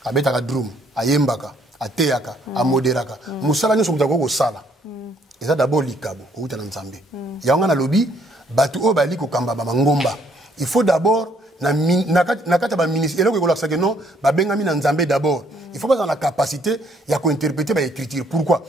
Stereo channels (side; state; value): both; normal; correlation 0.66